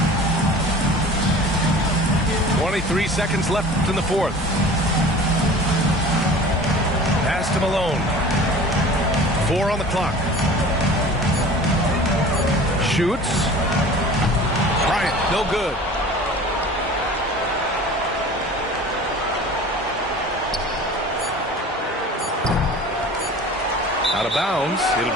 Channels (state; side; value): normal; both; correlation 0.42